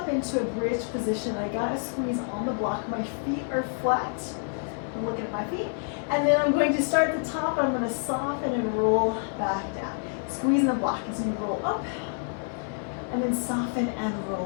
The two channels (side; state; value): right; silent; 55 dB below the other